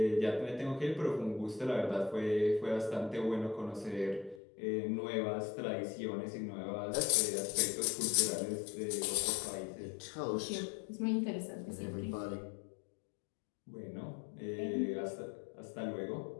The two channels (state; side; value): drops out; right; at 4.4 s